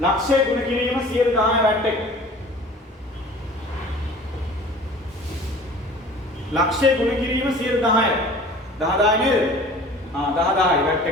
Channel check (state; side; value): normal; both; correlation 0.44